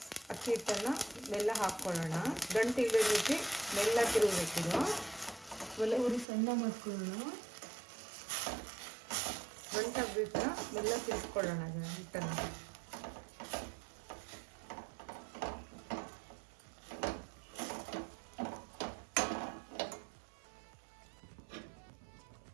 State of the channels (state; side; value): drops out; left; at 6.2 s